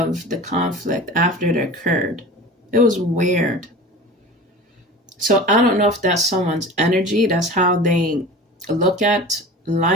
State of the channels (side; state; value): both; normal; correlation 0.36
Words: the conflict after it occurred. It was weird. So I don't know if that's someone's energy, that's how they look at